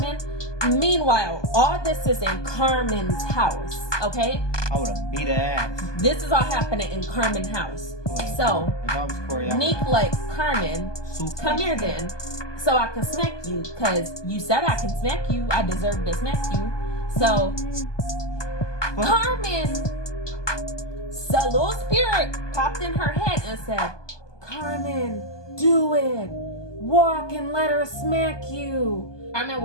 Meanwhile, all this is in Carmen's house, okay? I would have beat her ass. This is all happening in Carmen's house. So, if I was Corey, Nique like, Carmen, come here then, so I can smack you, because you said I can smack you. I deserve to smack you. So, Carmen, the little spirit popped in her head and said, Carmen, do it. Walk and let her smack you. Carmen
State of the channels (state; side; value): late; right; 1.2 ms